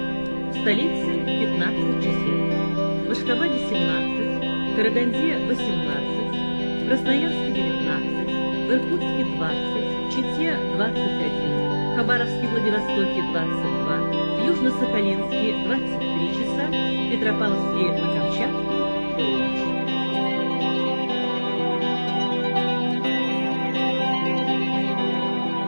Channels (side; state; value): both; inverted; correlation -1.00